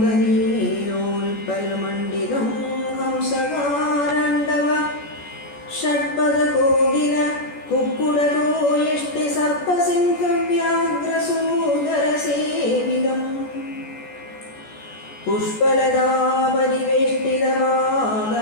ഹംസകാരണ്ഡവ ഷഡ്പദകോകില കുക്കുടകോയഷ്ടി സർപ്പസിംഹവ്യാഘ്രസൂദരസേവിതം.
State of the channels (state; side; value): late; right; 14 ms